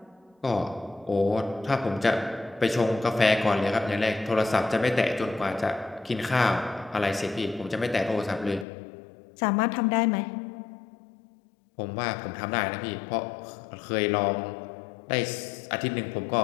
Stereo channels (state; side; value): drops out; right; at 8.7 s